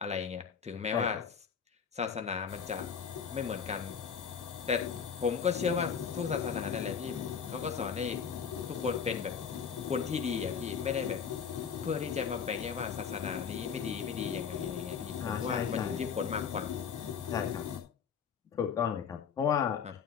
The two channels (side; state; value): right; quieter; 6.8 dB